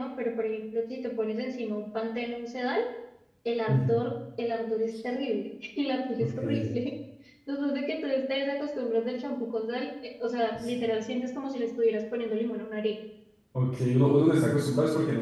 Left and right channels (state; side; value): identical; both; correlation 1.00